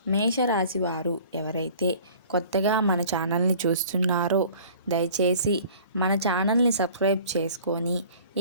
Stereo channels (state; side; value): inverted; both; correlation -0.48